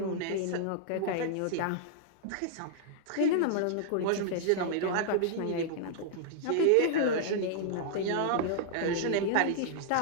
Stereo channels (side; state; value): both; different; correlation -0.01